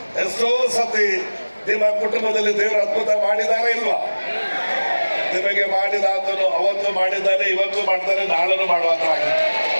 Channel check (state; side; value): inverted; both; correlation -1.00